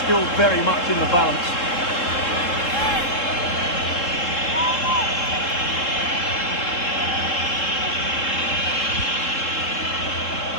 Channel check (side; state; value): right; late; 3.7 ms